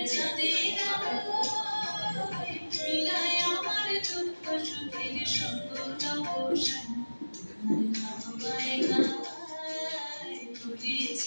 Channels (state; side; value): inverted; both; correlation -1.00